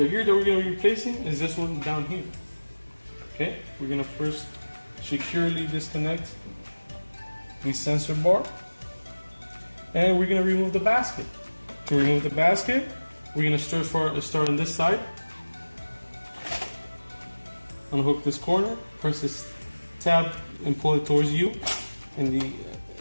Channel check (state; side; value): inverted; both; correlation -1.00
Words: gear that we're going to be replacing is this one down here. Okay, we're going to first securely disconnect the sensor bar, and we're going to remove the basket. To remove the basket, we're going to start on this side. Unhook this corner, press this tab and pull it towards you, and